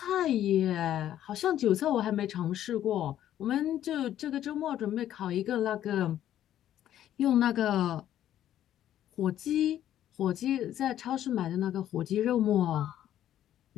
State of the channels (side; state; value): right; quieter; 11.6 dB